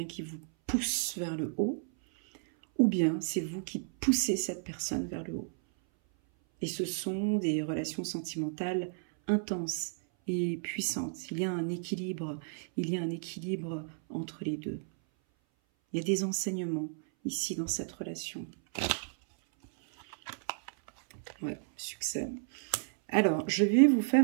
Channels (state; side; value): silent; left; 56 dB below the other